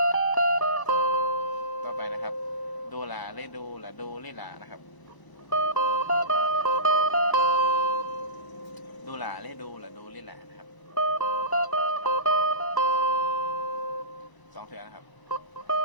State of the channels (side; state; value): right; late; 1.0 ms